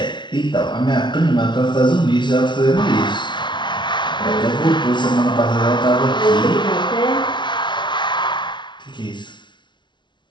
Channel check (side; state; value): right; late; 0.23 ms